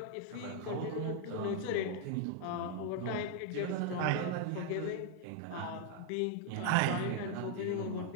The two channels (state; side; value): different; both; correlation 0.00